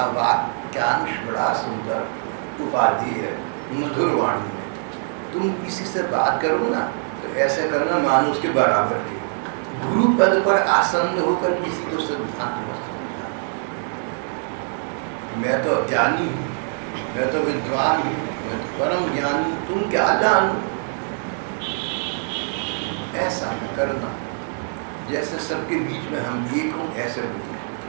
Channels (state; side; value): silent; left; 63 dB below the other